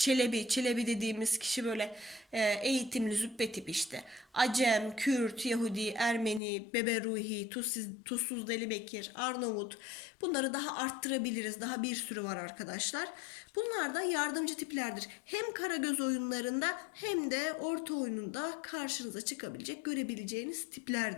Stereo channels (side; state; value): right; drops out; at 6.4 s